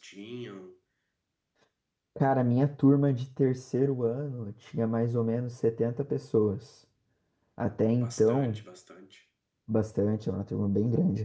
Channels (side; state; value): both; identical; correlation 1.00